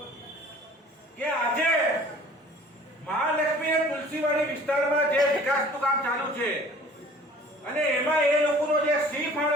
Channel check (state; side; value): normal; both; correlation 0.49